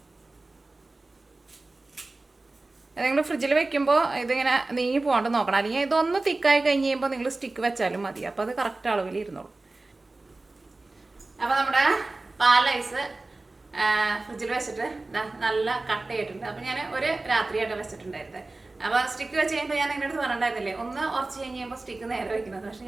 നിങ്ങൾ ഫ്രിഡ്ജിൽ വെക്കുമ്പോൾ ഇതിങ്ങനെ നീങ്ങി പോകാണ്ട് നോക്കണം. അല്ലെങ്കിൽ ഇതൊന്ന് തിക്കായി കഴിഞ്ഞ് കഴിയുമ്പോൾ നിങ്ങൾ സ്റ്റിക്ക് വെച്ചാലും മതി. അപ്പോൾ അത് കറക്റ്റ് അളവിൽ ഇരുന്നോളൂ. അപ്പോൾ നമ്മുടെ പാലൈസ് ഫ്രിഡ്ജിൽ വെച്ചിട്ട് നല്ല കട്ടയായിട്ടുണ്ട്. അപ്പോൾ ഞാൻ ഒരു രാത്രിയായിട്ട് വെച്ചിട്ടുണ്ടായിരുന്നത്. അപ്പോൾ സ്റ്റിക്ക് വെച്ച് കഴിയുമ്പോൾ ഞാൻ നിങ്ങളുടെ അടുത്ത് പറഞ്ഞിട്ടുണ്ടായിരുന്നില്ലേ, ഒന്ന് ഉറച്ച് കഴിഞ്ഞ് കഴിയുമ്പോൾ സ്റ്റിക്ക് നേരെ വയ്ക്കുന്നത്. പക്ഷേ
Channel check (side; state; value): left; quieter; 3.2 dB